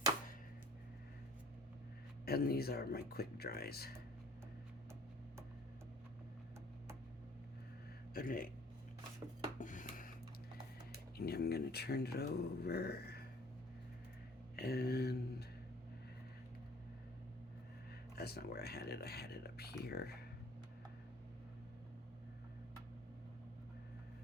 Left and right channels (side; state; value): both; normal; correlation 0.52